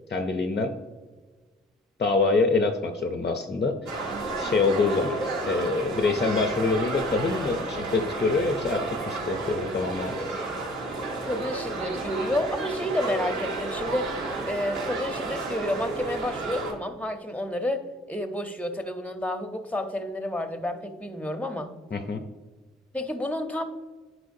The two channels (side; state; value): both; normal; correlation 0.50